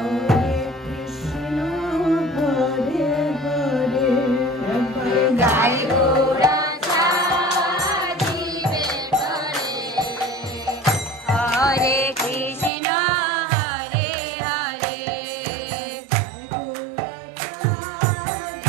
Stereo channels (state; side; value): drops out; left; at 12.7 s